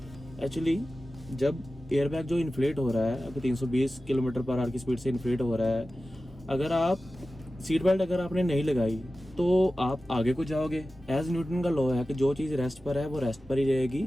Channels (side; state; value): both; normal; correlation 0.95